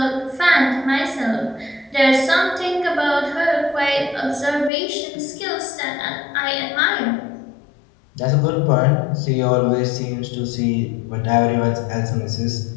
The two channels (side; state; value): right; drops out; at 4.7 s